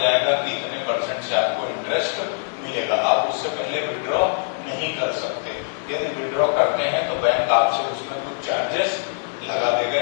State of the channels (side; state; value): right; silent; 63 dB below the other